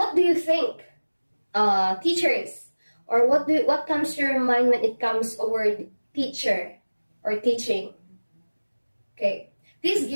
do you think, teachers, or what comes to your mind when it comes a word teacher or teaching? Okay, please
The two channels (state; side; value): inverted; both; correlation -1.00